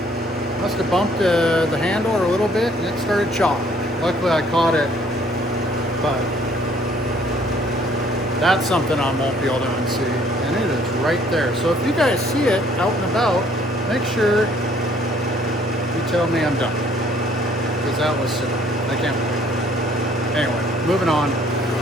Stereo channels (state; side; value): normal; both; correlation 0.61